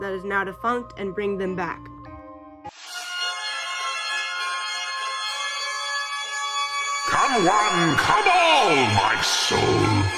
that is now defunct and bring them back. Come one, come all, my soul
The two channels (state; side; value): identical; both; correlation 1.00